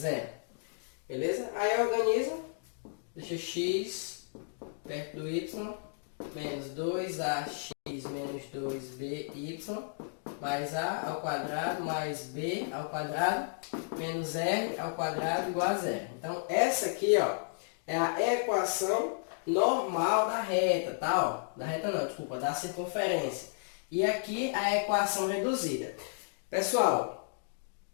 Beleza? Aí organiza, deixa x perto do y, menos 2ax menos 2by, mais a ao quadrado, mais b ao quadrado, menos r ao quadrado igual a zero. Então, essa aqui, ó, é a equação normal da reta, tá? Ó, da reta não, desculpa, da circunferência. E aqui a equação reduzida. Pessoal,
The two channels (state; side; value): silent; right; digital silence